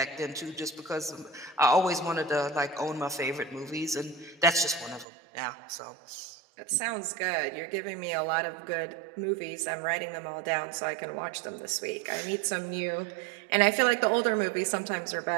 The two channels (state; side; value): drops out; left; at 5.1 s